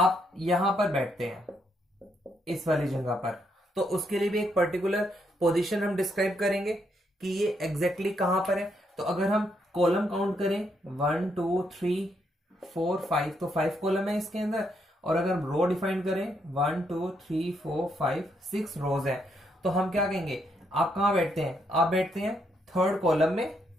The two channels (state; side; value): normal; both; correlation 0.76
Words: यहां पर बैठते हैं इस वाली जगह पर, तो उसके लिए भी एक पर्टिकुलर पोजीशन हम डिस्क्राइब करेंगे कि ये एग्जैक्टली कहां पर है। तो अगर हम कॉलम काउंट करें 1 2 3 4 5, तो 5 कॉलम है इसके अंदर। और अगर हम रो डिफाइन करें 1 2 3 4 5 6 रोज है, तो हम क्या कहेंगे? आप कहां बैठते हैं? आप बैठते हैं थर्ड कॉलम में।